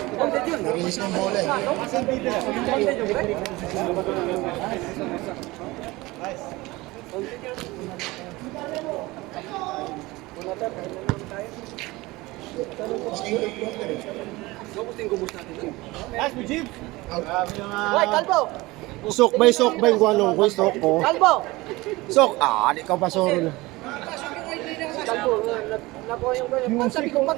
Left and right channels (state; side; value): quieter; left; 21.1 dB